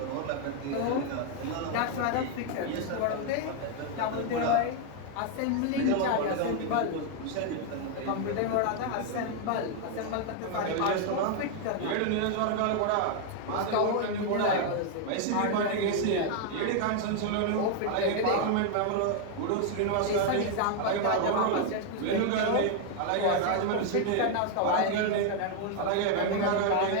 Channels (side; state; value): both; different; correlation 0.00